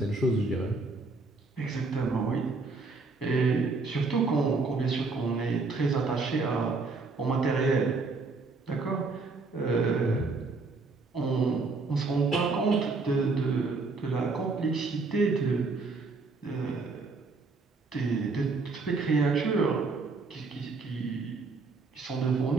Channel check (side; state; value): left; quieter; 4.0 dB